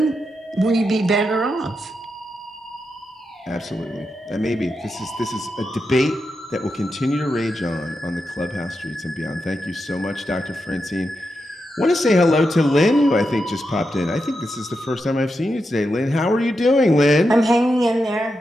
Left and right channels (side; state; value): both; normal; correlation 0.87